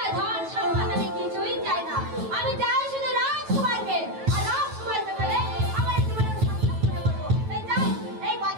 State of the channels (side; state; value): left; late; 9.2 ms